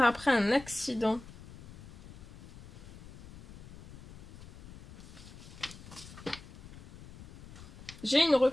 un accident. J'ai une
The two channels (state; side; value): noise; left; rumble, 16 dB below the sound